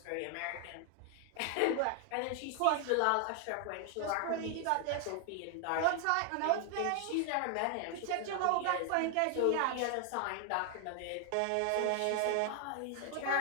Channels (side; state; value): both; different; correlation 0.00